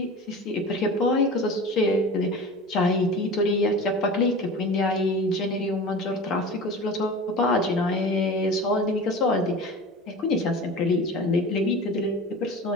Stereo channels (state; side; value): normal; both; correlation 0.35